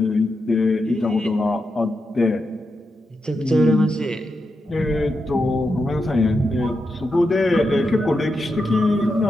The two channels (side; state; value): both; normal; correlation 0.87